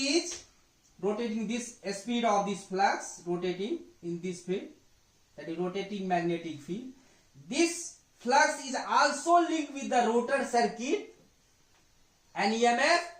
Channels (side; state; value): both; identical; correlation 1.00